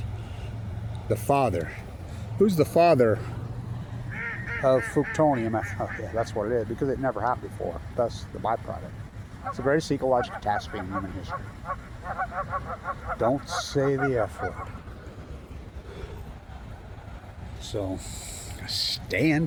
The father. Who's the father of plutonium? Oh, yeah, that's what it is, because it never happened before. Thus, the byproduct. It's the greatest ecological catastrophe in human history. Don't say the F word. So, stay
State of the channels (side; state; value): both; identical; correlation 1.00